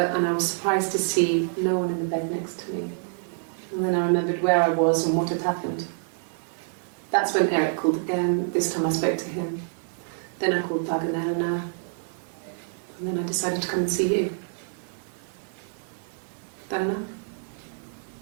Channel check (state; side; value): silent; left; digital silence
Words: I was surprised to see no one in the bed next to me. And then I remembered where I was and what had happened. That's when Eric called again. This time I spoke to him. Then I called Doug and Eleanor. And then I decided to come and see you. That enough?